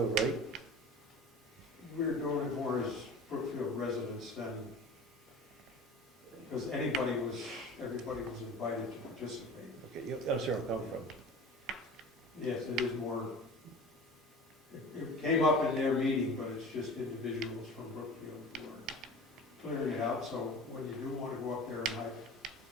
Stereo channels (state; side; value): normal; both; correlation 0.38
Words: right? We're doing it more as Brookfield residents than, because everybody was invited to participate. Okay, I'm sorry, I'm coming from. Yes, it is more, it came up in their meeting, but it's just individuals from Brookfield who are clearing it out, so when you do want to go up there and